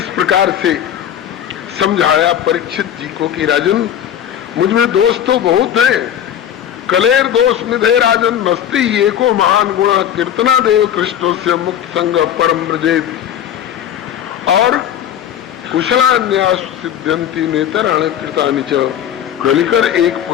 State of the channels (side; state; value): right; quieter; 10.2 dB